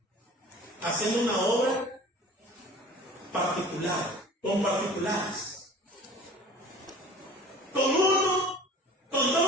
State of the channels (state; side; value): normal; both; correlation 0.44